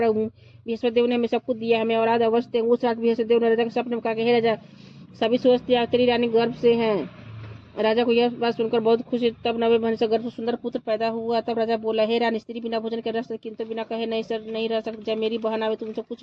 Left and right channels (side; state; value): both; identical; correlation 1.00